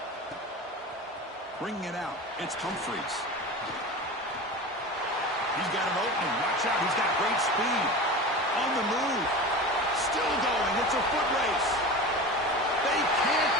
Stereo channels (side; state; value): both; normal; correlation 0.31